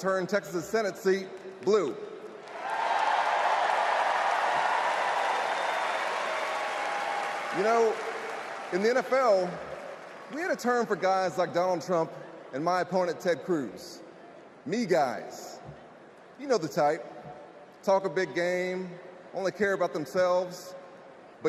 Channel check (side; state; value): both; identical; correlation 1.00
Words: turn Texas's Senate seat blue. You know, in the NFL, we had a term for guys like Donald Trump and my opponent Ted Cruz. Me guys. You know the type. Talk a big game, only care about themselves,